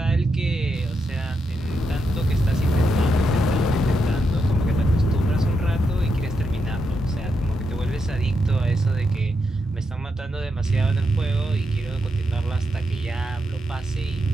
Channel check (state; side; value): normal; both; correlation 0.83